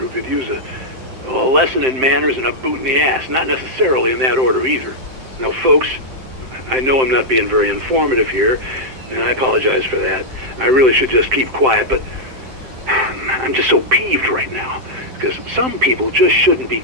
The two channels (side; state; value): left; late; 7.7 ms